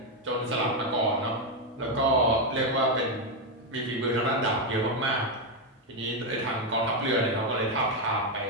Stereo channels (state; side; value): normal; both; correlation 0.05